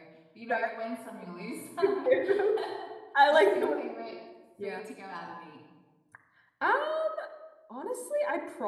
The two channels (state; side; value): identical; both; correlation 1.00